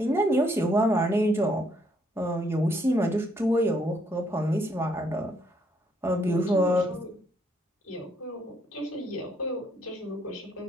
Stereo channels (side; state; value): both; normal; correlation 0.70